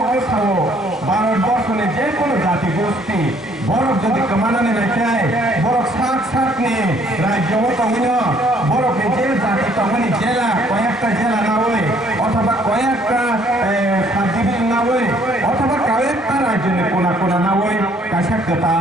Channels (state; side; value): normal; both; correlation 0.62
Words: सावो भारतबर्षनि जे कोनो जाति गोष्ठी बरफ যদি কমানানে রাখায় বরফ সাকনি রাজ্যও তঙ্গিনো বরফে যে জাতি তঙ্গনি জেলা কয়েকটা জেলা না হয় অথবা কয়েকটা সাবডিভিশন না হয় অথবা কয়েকটা রাজ্যের কোনা না হয় কাছা